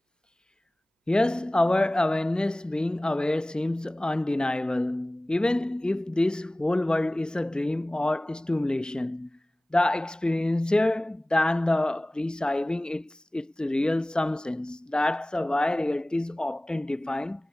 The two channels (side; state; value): both; normal; correlation 0.98